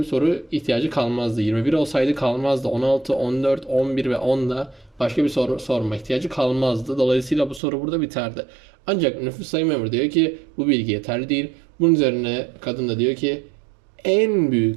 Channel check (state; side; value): drops out; left; at 7.6 s